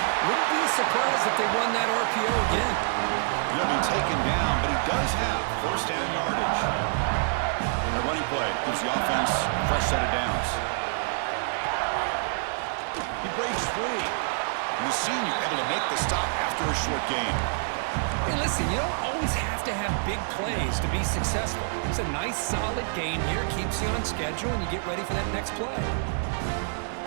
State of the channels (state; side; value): silent; left; 57 dB below the other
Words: Wouldn't be surprised if they run that RPO again. He'll be taken down, but he does have first down yardage. The running play gives the offense a fresh set of downs. He breaks free. And the senior able to make the stop after a short gain. Hey, listen, you don't always have to have big plays to be successful. It's a nice, solid gain here. Keeps you on schedule, and you get ready for that next play.